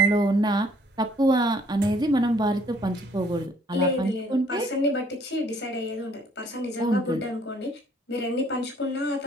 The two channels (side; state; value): both; normal; correlation 0.61